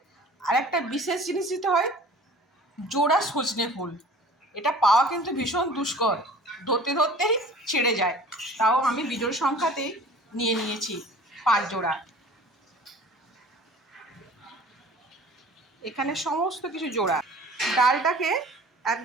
আরেকটা বিশেষ জিনিস দিতে হয়, জোড়া সজনে ফুল। এটা পাওয়া কিন্তু ভীষণ দুষ্কর, ধরতে ধরতেই ছেড়ে যায়, তাও আমি বিজোড় সংখ্যাতেই নিয়ে নিয়েছি 5 জোড়া। এখানে সমস্ত কিছু জোড়া। ডালটাকে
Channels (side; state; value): both; normal; correlation 0.46